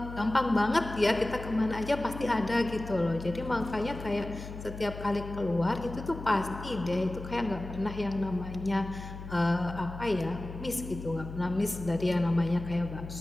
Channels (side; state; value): left; noise; hum, 11 dB below the sound